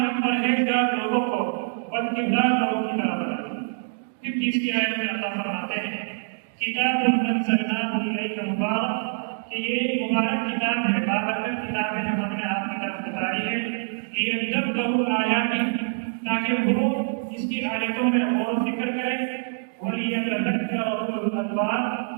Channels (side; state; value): left; silent; digital silence